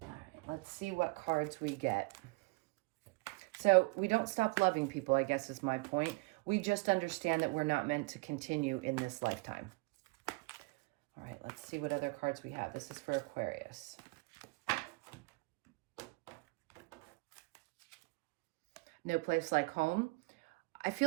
right, let's see what cards we get. So we don't stop loving people, I guess is my point. We just understand that we're not meant to continue in this lifetime. All right, let's see what other cards we have. This is for Aquarius. No place like home. I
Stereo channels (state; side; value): quieter; left; 27.0 dB